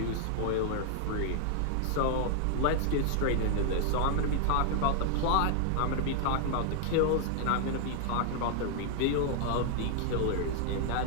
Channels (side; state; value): both; different; correlation 0.00